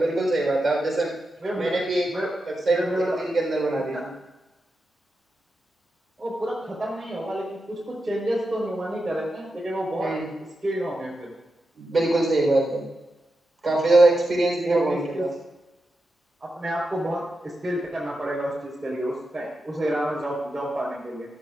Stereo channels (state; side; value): normal; both; correlation 0.88